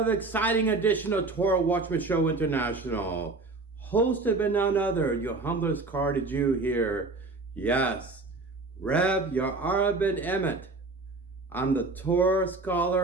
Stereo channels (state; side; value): quieter; left; 3.5 dB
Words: exciting edition of Torah Watchman Show International. Hosted by none other, your humblest Karaite Jew here. Yes, Rev Ya'ara ben-Emmett. I'm the Torah